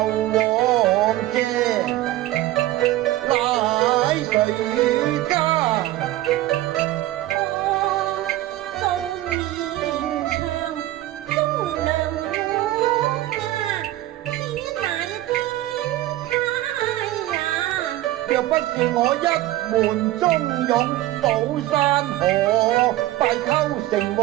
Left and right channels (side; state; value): left; quieter; 15.7 dB